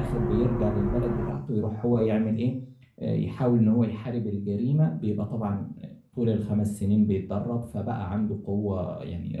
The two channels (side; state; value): both; identical; correlation 1.00